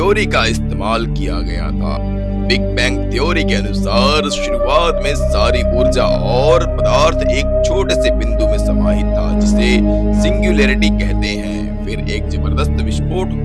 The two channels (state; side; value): identical; both; correlation 1.00